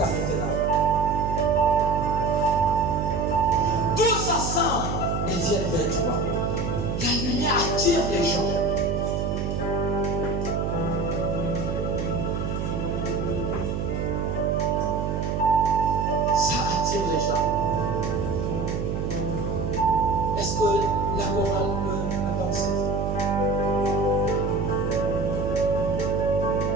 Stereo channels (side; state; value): right; noise; hum, 2 dB below the sound